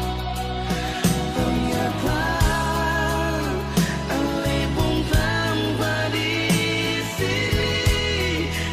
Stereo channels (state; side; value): identical; both; correlation 1.00